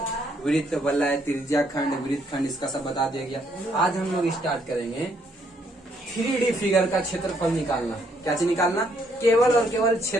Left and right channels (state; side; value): normal; both; correlation 0.70